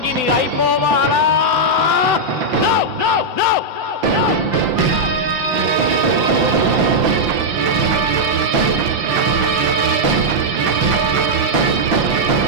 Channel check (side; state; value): left; late; 5.9 ms